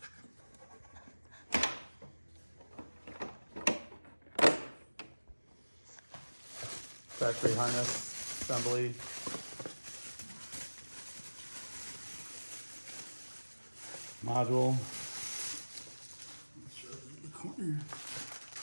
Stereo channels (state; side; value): inverted; both; correlation -1.00